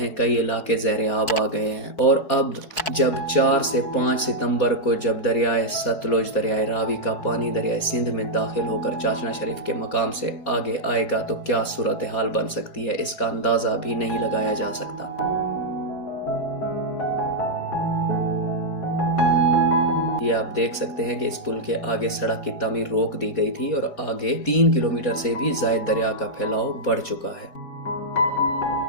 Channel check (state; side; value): late; right; 4.2 ms